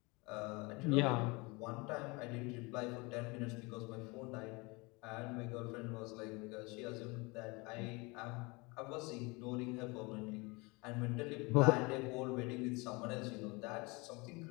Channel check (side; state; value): right; quieter; 26.6 dB